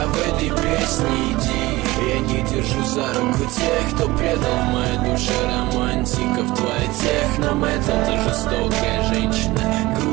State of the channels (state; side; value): quieter; left; 19.7 dB